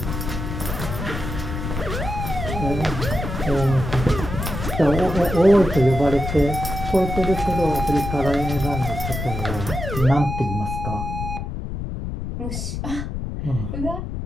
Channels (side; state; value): left; noise; rumble, 5 dB below the sound